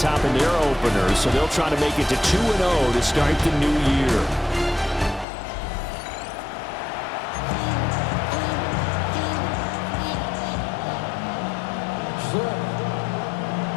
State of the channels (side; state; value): right; drops out; at 5.2 s